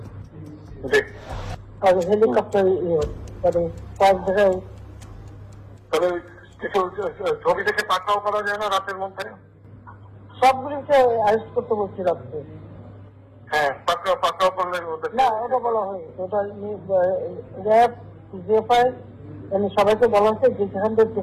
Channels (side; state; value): both; identical; correlation 1.00